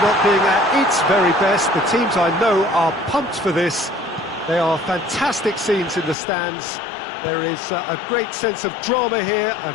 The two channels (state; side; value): drops out; right; at 6.2 s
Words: being at its very best. The teams I know are pumped for this. They are fantastic scenes in the stands. There is a great sense of drama here, a